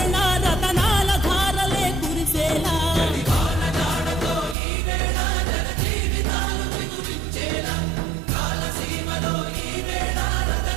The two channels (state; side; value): drops out; left; at 4.5 s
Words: రతనాల ధారలే కురిసేలా